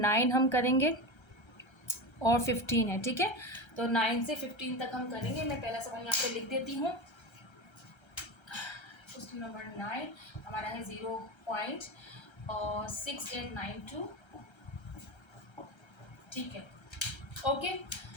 हम करेंगे और 15 है, ठीक है। तो 9 से 15 तक हम करेंगे। मैं पहला सवाल यहाँ पे लिख देती हूँ। क्वेश्चन नंबर 9 हमारा है 0.6892, ठीक है। ओके,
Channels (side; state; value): right; late; 1.3 ms